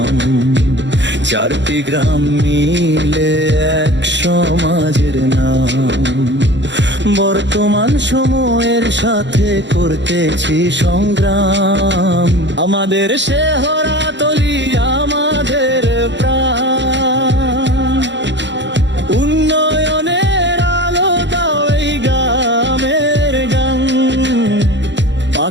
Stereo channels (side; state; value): left; late; 0.52 ms